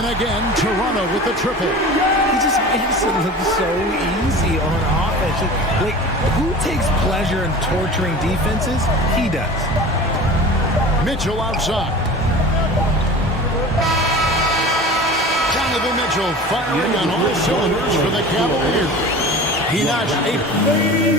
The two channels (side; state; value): both; normal; correlation 0.37